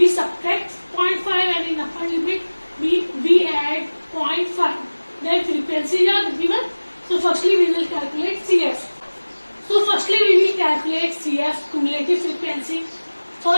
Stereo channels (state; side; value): inverted; both; correlation -1.00